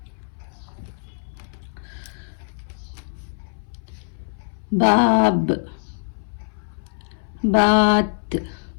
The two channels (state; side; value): silent; right; 60 dB below the other